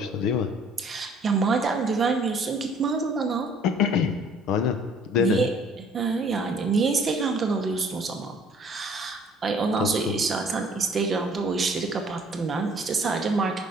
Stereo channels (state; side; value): normal; both; correlation 0.56